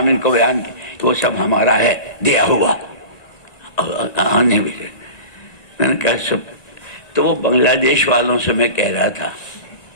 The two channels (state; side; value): late; right; 1.9 ms